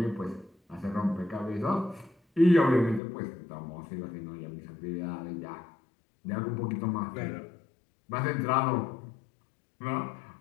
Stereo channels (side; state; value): right; drops out; at 3.0 s